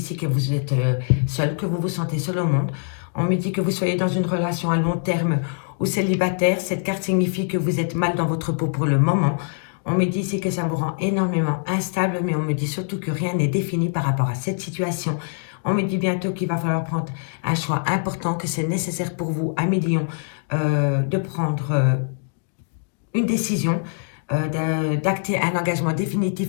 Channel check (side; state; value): right; silent; digital silence